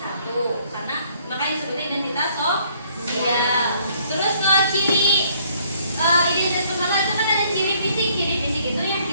karena makanya disebutnya identitas sosial. Terus kalau ciri identitas personal itu kan ada ciri fisik. Ciri fisik itu yang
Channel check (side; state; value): both; inverted; correlation -0.63